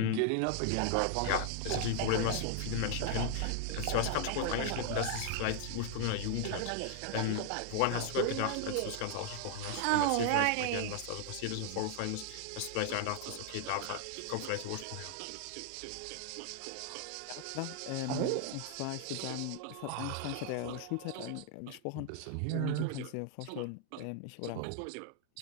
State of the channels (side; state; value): both; different; correlation 0.00